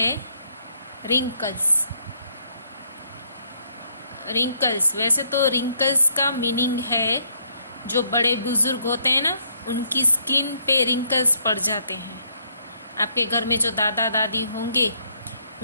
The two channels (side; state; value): both; inverted; correlation -0.70